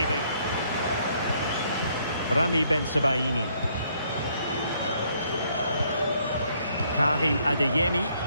Rami Bensebaini. Karim Adeyemi.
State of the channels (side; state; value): both; inverted; correlation -0.68